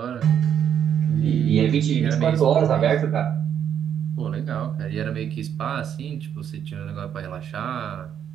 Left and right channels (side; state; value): left; quieter; 8.9 dB